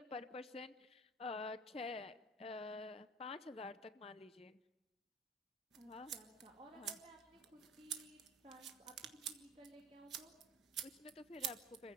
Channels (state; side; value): normal; both; correlation 0.42